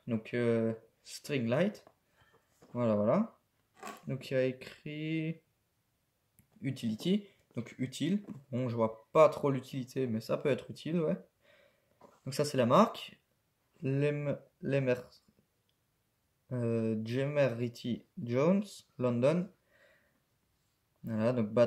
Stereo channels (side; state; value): both; identical; correlation 1.00